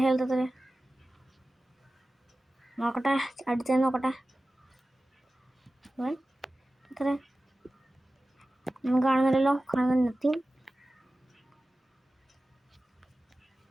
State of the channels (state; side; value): normal; both; correlation 0.96